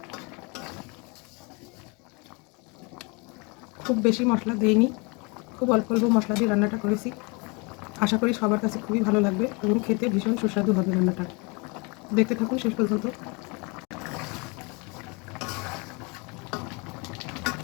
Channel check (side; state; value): right; quieter; 30.0 dB